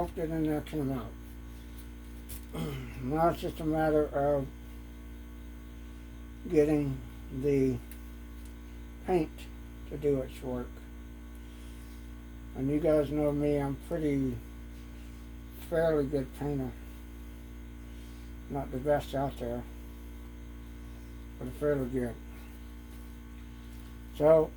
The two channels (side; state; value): both; identical; correlation 1.00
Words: in there came out. Now it's just a matter of getting the paint to do its work. And you guys know me, I'm fairly good painter. Not the best out there, but fairly good. So,